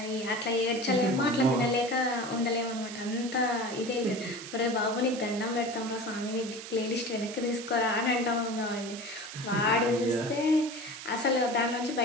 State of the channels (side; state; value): right; noise; hiss, 11 dB below the sound